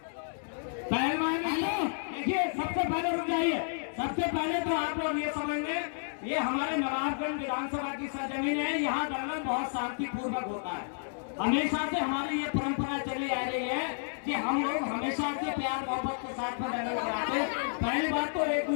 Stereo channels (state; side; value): silent; right; digital silence